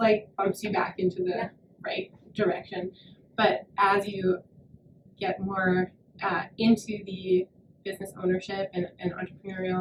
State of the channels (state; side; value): identical; both; correlation 1.00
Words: like bumps you back into the right direction. But as you get more into the business ownership and